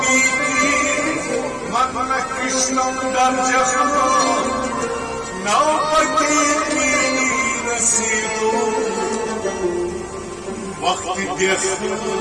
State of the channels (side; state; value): both; identical; correlation 1.00